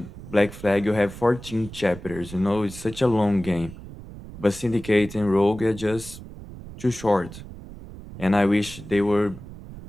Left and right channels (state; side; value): noise; right; rumble, 15 dB below the sound